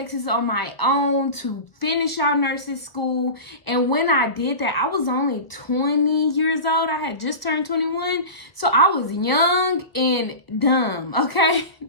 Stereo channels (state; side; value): late; right; 1.2 ms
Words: on my own to finish out nursing school. And when I did that, I was only 20 years old. I had just turned 21. So I was young and dumb, okay?